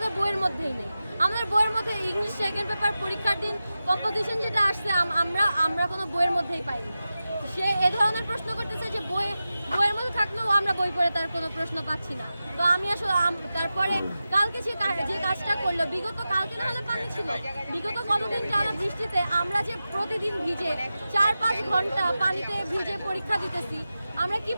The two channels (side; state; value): both; inverted; correlation -0.93